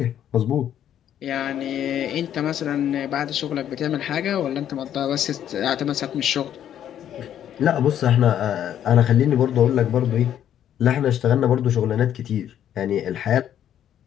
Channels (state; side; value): quieter; right; 10.4 dB